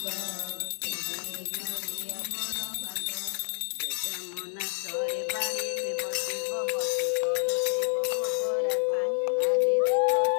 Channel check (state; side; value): silent; right; digital silence